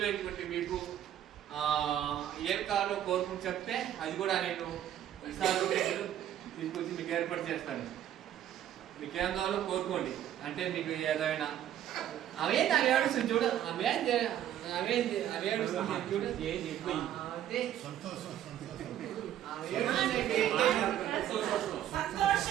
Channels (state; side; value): quieter; left; 11.2 dB